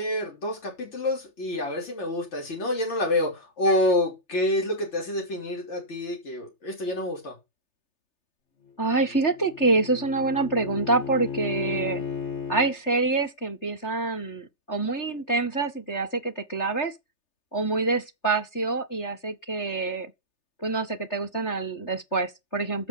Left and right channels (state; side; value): late; right; 3.3 ms